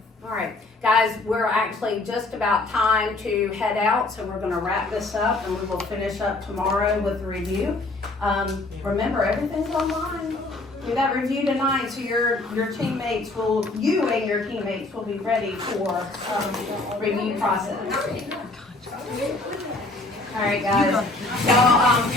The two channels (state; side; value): quieter; right; 3.1 dB